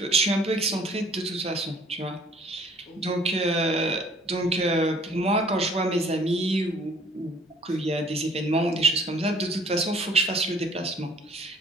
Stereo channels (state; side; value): normal; both; correlation 0.55